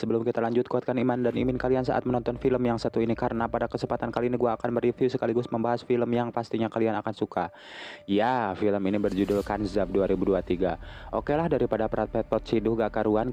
kita lanjut, kuatkan iman dan imin kalian saat menonton film yang satu ini, karena pada kesempatan kali ini gue akan mereview sekaligus membahas film yang pastinya kalian akan suka. Ya, film ini berjudul Kanzab 2023. Oke lah, daripada perat pet ciduh gak karuan,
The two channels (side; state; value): both; identical; correlation 1.00